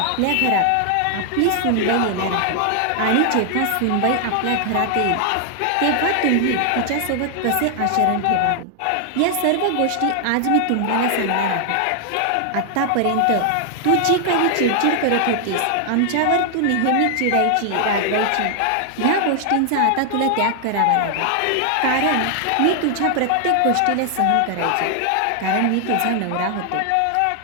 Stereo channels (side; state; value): both; different; correlation 0.00